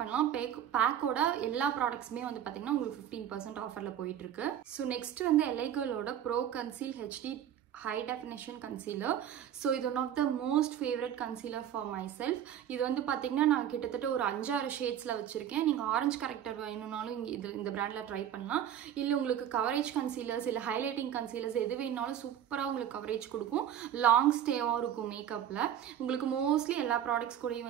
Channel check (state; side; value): quieter; left; 10.1 dB